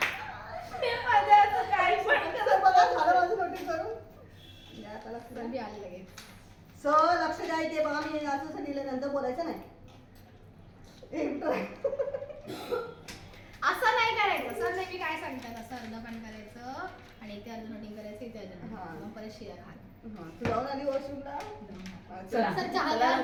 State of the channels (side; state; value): both; identical; correlation 1.00